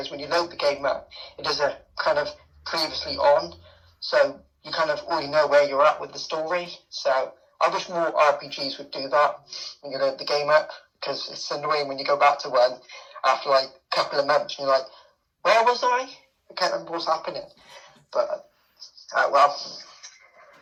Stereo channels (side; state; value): both; identical; correlation 1.00